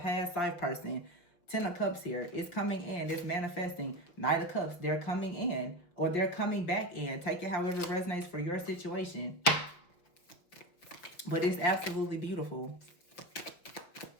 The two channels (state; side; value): late; right; 5.7 ms